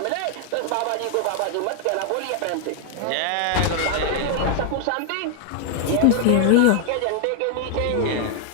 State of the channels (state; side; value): different; both; correlation 0.00